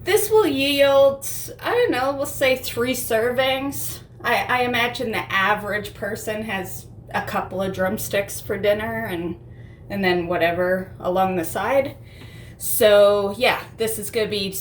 This will yield, I don't know, we'll say 3 servings. I imagine the average person has a couple of drumsticks for dinner and then whatever along the side. So yeah, this is gonna be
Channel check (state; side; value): identical; both; correlation 1.00